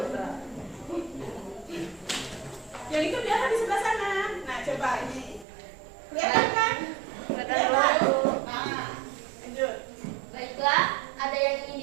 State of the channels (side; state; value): left; drops out; at 5.5 s